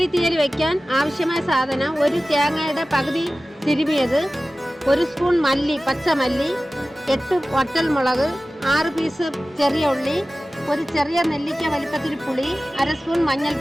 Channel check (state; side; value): normal; both; correlation 0.96